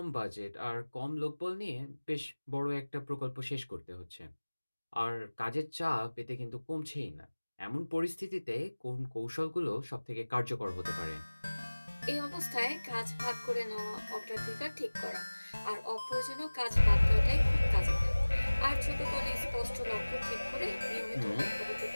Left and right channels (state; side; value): inverted; both; correlation -1.00